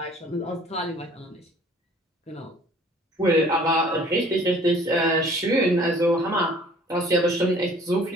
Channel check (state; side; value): normal; both; correlation 0.53